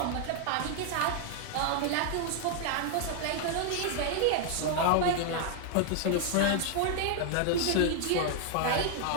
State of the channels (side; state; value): both; different; correlation 0.00